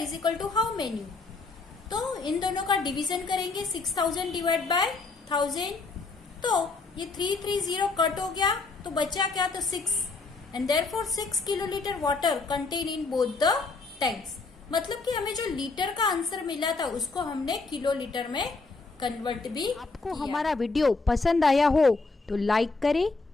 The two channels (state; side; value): quieter; right; 3.9 dB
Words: is equal to how many. तो इन दोनों का डिवीजन करेंगे 6,000 डिवाइड बाय 1000। तो ये 330 कट हो गया तो बचा क्या, तो 6 and therefore 6 kilo litre water contain in both the tanks. मतलब कि हमें जो लीटर का आंसर मिला था उसको हमने किलो लीटर में कन्वर्ट भी। आपको हमारा वीडियो पसंद आया हो तो लाइक करें,